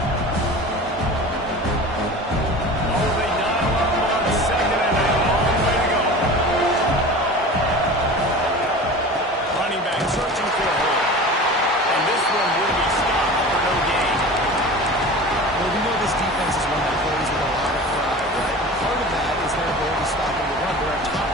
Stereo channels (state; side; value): normal; both; correlation 0.36